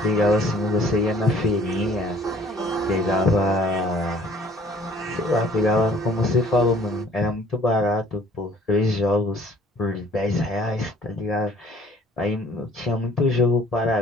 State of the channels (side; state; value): both; normal; correlation 0.54